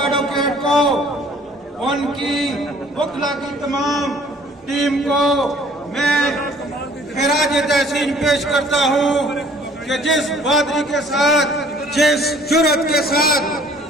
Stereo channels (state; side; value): normal; both; correlation 0.55